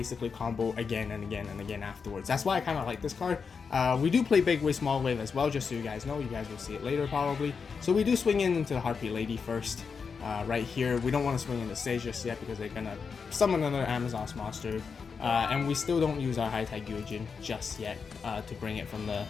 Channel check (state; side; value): quieter; right; 5.6 dB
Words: combo again and again and again afterwards. That's why I kind of like this card. We do play Big Wave, Small Wave as well, just so you guys know. You guys will see it later probably. So we do swing into the Harpy Lady first. Right here, we don't want to swing into Sage just yet because they're gonna summon another Amazon's monster, and we still don't use our High Tide Gyojin just yet to bring it from the